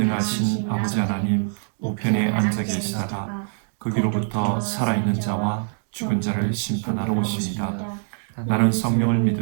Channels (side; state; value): left; silent; digital silence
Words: 아버지 하나님 우편에 앉아 계시다가 거기로부터 살아있는 자와 죽은 자를 심판하러 오십니다. 나는 성령을